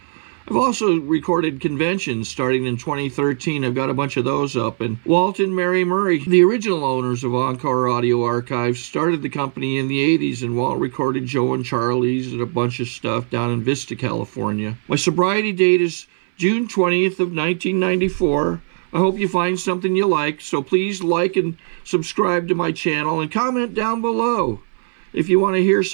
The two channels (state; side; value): silent; left; 62 dB below the other